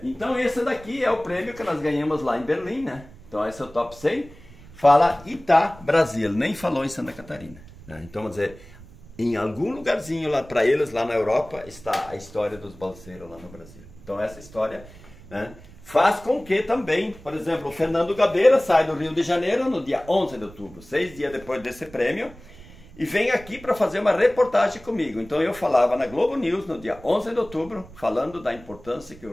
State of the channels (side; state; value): right; noise; rumble, 20 dB below the sound